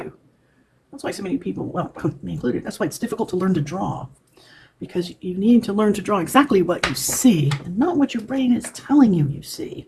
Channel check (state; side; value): identical; both; correlation 1.00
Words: That's why so many people, well, me included, that's why it's difficult to learn to draw. Because you need to learn to draw exactly what you see and not what your brain is telling you you see.